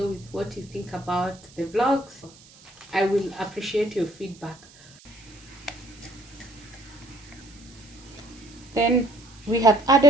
with what you think about the vlogs. I will appreciate your feedback. Then we have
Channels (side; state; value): right; noise; hiss, 23 dB below the sound